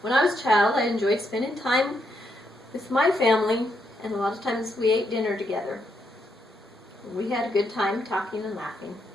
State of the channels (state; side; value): normal; both; correlation 0.78